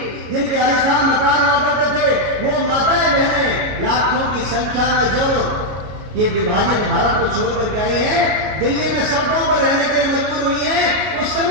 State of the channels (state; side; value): late; left; 33 ms